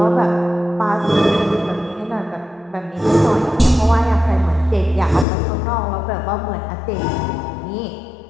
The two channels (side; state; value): right; drops out; at 5.2 s